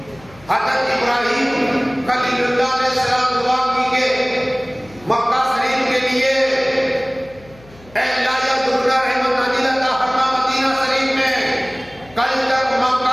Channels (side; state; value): left; noise; hum, 24 dB below the sound